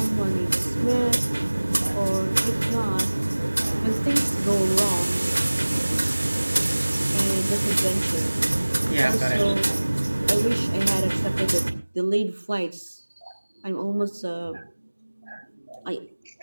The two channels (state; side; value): inverted; both; correlation -1.00